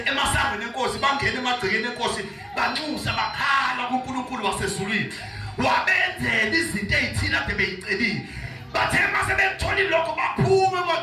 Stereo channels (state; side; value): identical; both; correlation 1.00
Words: emasangweni enkosi bangena emagcekeni enkosi banxusa bakhala kuNkulunkulu wasezulwini. Wabenzela izinto ezithile ade beyicelile. Bathe mase bethola lokho baphuma